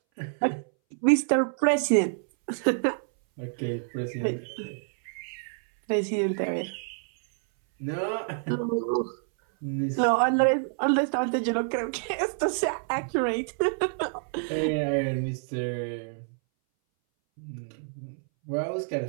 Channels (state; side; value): silent; left; 60 dB below the other